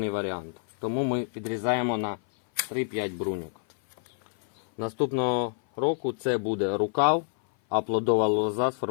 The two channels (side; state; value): right; silent; 56 dB below the other